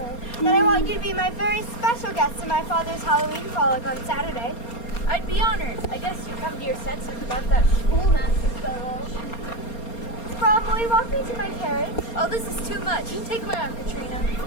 Then I want you to be my very special guest to my father's Halloween frolic on Saturday. I'd be honored. I guess you come to your senses about that schoolmaster fellow. Brom, will you walk me to my carriage? Oh, this is too much. Take my arm, Katrina.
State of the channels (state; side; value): late; right; 4.3 ms